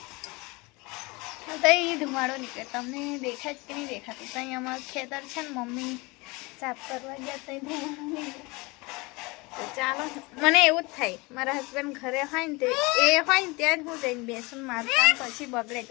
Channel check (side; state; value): right; quieter; 25.2 dB